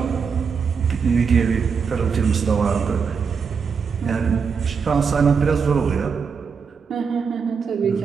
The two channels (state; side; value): quieter; left; 5.9 dB